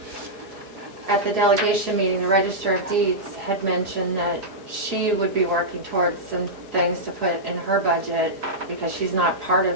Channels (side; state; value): left; late; 4.8 ms